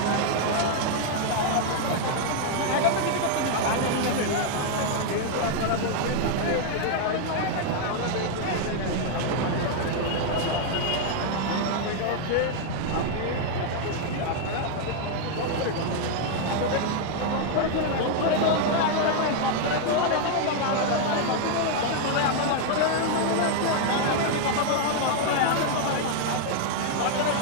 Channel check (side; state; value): both; different; correlation 0.00